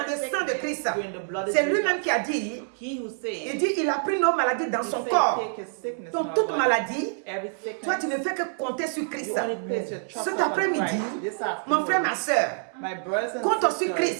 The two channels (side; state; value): left; silent; 61 dB below the other